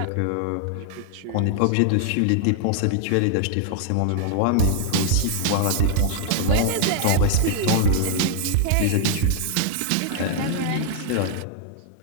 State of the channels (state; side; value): different; both; correlation -0.01